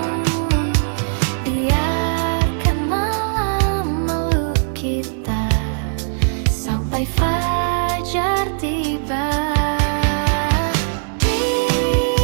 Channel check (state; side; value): silent; left; 60 dB below the other